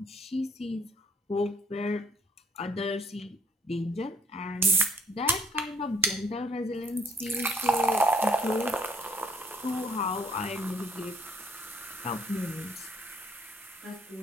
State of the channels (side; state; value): both; normal; correlation 0.63